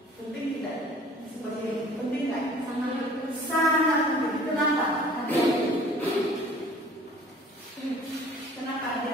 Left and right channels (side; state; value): both; normal; correlation 0.50